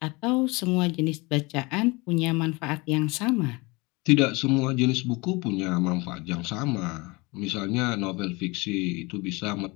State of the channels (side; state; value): right; quieter; 25.3 dB